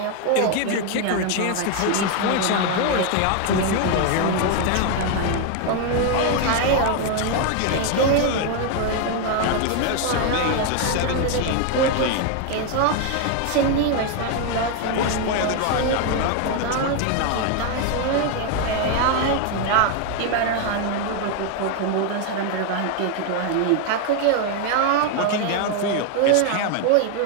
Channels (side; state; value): both; different; correlation 0.01